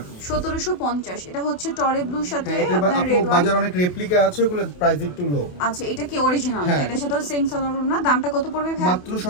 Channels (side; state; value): right; late; 28 ms